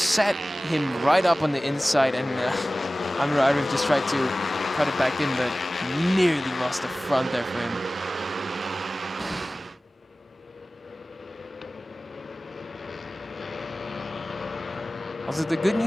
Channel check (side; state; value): both; normal; correlation 0.97